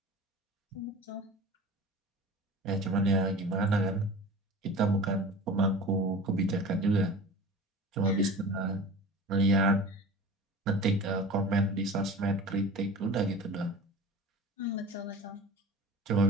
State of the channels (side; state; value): both; normal; correlation 0.37